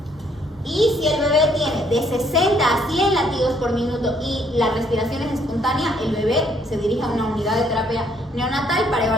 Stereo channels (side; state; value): both; normal; correlation 0.67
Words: Y si el bebé tiene de 60 a 100 latidos por minuto y la respiración es espontánea, el bebé se dirige a una unidad de terapia neonatal para